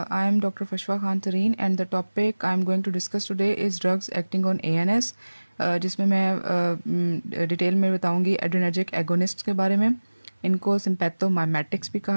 I am Dr. Fashwa Khan Tareen and the topic I am going to discuss today is drugs acting on ANS, जिसमें मैं detail में बताऊंगी adrenergic agonist के बारे में। इनको सिंपैथोमाइमेटिक्स भी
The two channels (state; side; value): inverted; both; correlation -1.00